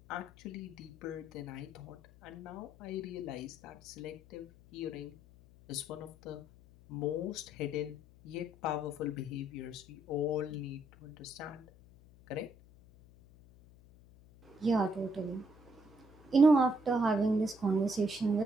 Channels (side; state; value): left; noise; hum, 23 dB below the sound